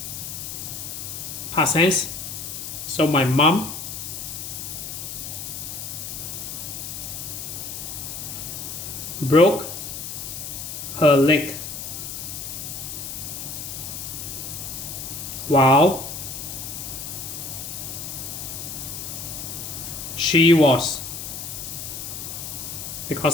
past tense. So my mom broke her leg while she was,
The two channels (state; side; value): noise; left; hiss, 7 dB below the sound